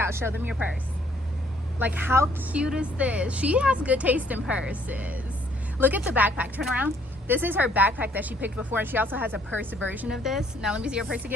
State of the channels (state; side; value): normal; both; correlation 0.64